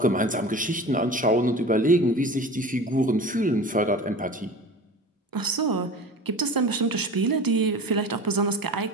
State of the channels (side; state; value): both; normal; correlation 0.36